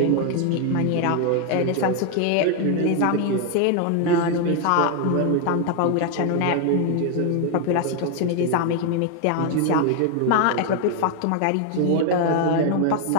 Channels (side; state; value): both; different; correlation 0.00